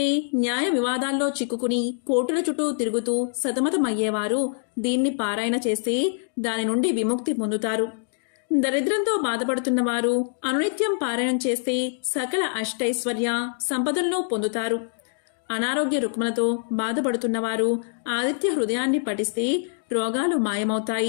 న్యాయ వివాదాల్లో చిక్కుకుని కోర్టుల చుట్టూ తిరుగుతూ సతమతమయ్యేవారు దీన్ని పారాయణ చేస్తే దాని నుండి విముక్తి పొందుతారు. దరిద్రంతో బాధపడుతున్న వారు అనునిత్యం పారాయణం చేస్తే సకల అష్టైశ్వర్య సంపదలను పొందుతారు. అనారోగ్య రుగ్మలతో బాధపడుతున్నవారు ఆదిత్య హృదయాన్ని పఠిస్తే రోగాలు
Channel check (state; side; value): silent; right; digital silence